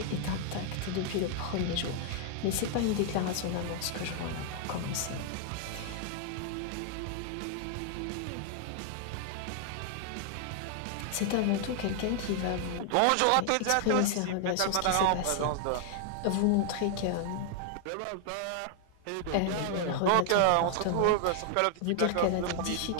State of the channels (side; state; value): both; different; correlation 0.00